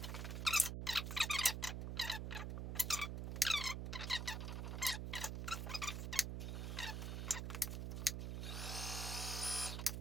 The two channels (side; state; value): right; noise; hum, 3 dB below the sound